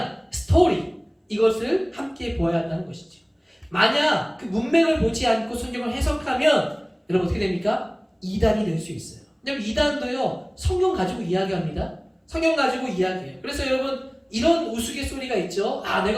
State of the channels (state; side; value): identical; both; correlation 1.00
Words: 스토리, 이것을 함께 보아야 한다는 것이죠. 만약 그 문맥을 보지 않고 성경을 해석하면 여러분 어떻게 됩니까? 이단이 될 수 있어요. 왜냐면 이단도요, 성경 가지고 이야기합니다. 성경 가지고 이야기해요. 그래서 여러분, 이런 우스갯소리가 있죠. 아,